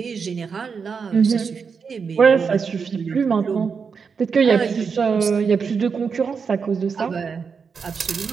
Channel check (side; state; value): left; quieter; 5.8 dB